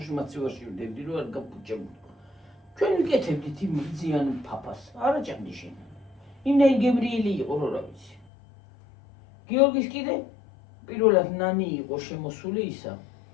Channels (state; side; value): drops out; right; at 8.2 s